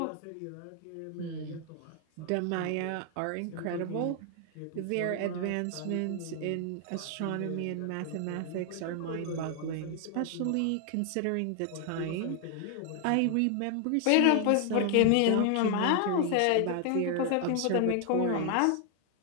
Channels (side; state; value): both; different; correlation 0.00